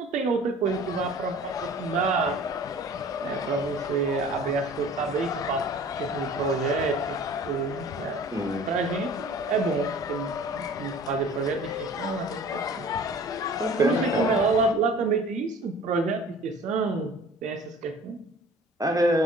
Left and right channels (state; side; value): normal; both; correlation 0.46